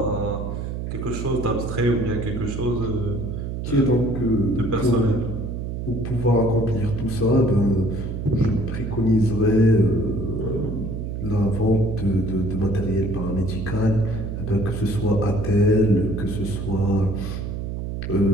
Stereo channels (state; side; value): noise; right; hum, 5 dB below the sound